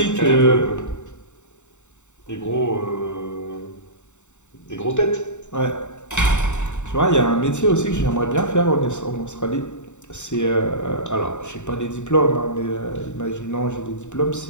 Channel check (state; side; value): late; right; 0.84 ms